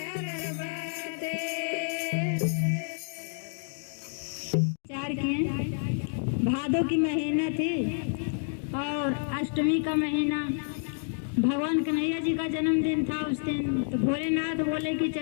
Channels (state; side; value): silent; right; digital silence